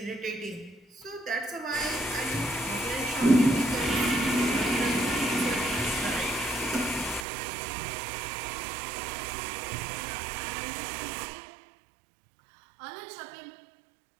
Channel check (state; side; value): drops out; left; at 7.2 s